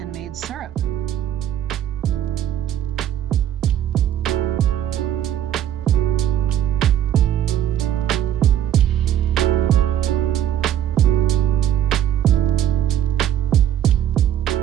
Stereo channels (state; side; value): quieter; left; 10.7 dB